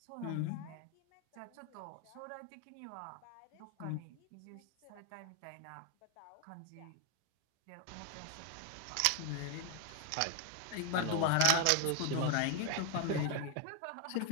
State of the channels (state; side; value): different; both; correlation 0.01